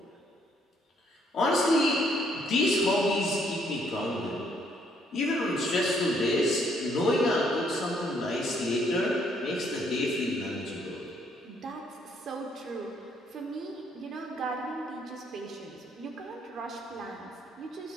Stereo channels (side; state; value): both; normal; correlation 0.69